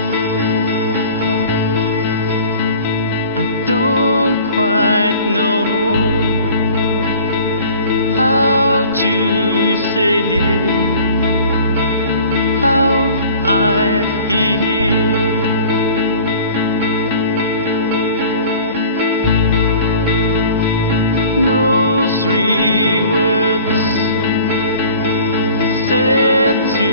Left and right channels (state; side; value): inverted; both; correlation -0.46